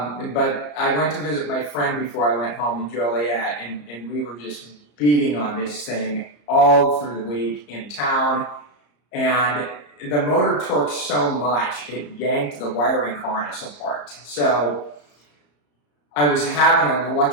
I went to visit my friend before I went home in Joliet, and we were just beating on this thing all through the week in town, and the motor torqued so much it yanked the wiring harness apart. So I was having an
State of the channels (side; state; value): right; late; 34 ms